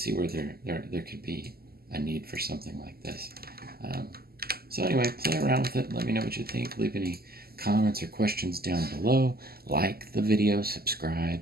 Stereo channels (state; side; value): late; left; 0.45 ms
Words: where there could be a need for something like this. So anyway, play around with it. Let me know what you think. Leave any comments or questions down below. Like the video,